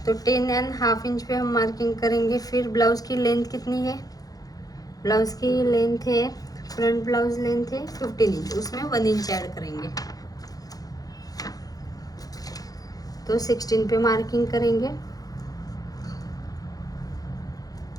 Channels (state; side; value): late; right; 0.18 ms